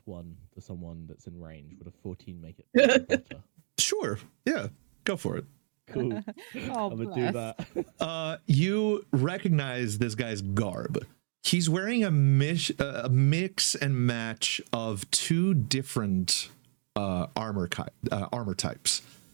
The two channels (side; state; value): left; silent; digital silence